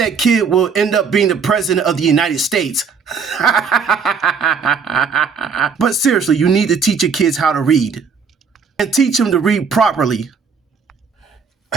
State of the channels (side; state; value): left; quieter; 5.8 dB